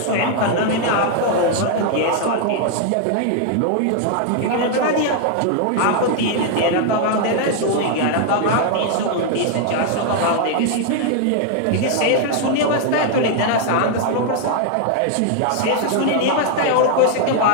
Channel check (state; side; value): different; both; correlation 0.00